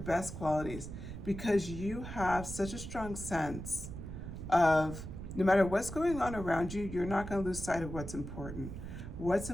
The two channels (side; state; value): right; noise; rumble, 9 dB below the sound